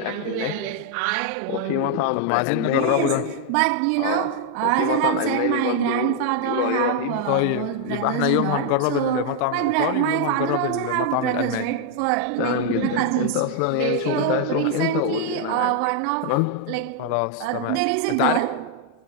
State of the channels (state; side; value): different; both; correlation 0.00